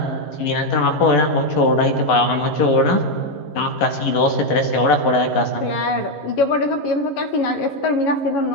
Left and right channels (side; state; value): right; late; 11 ms